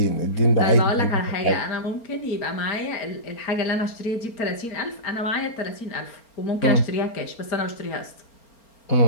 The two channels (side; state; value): right; late; 4.3 ms